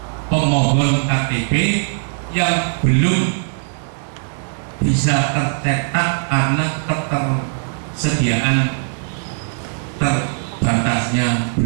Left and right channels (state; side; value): silent; left; digital silence